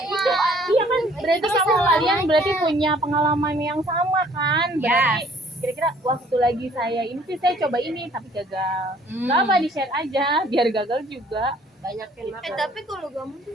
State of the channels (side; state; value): both; normal; correlation 0.58